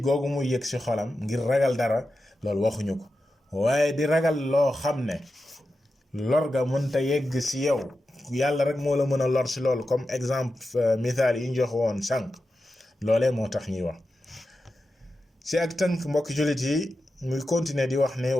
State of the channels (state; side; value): normal; both; correlation 0.91